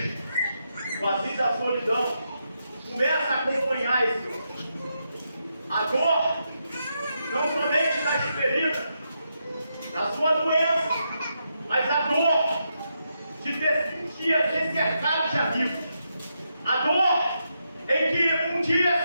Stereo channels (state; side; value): inverted; both; correlation -0.83